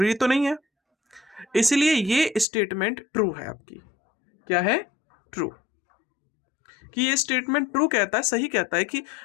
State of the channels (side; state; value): right; drops out; at 2.5 s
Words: तो नहीं है। इसलिए ये स्टेटमेंट ट्रू है आपकी। क्या है? ट्रू। कि ये स्टेटमेंट ट्रू कहता है, सही कहता है कि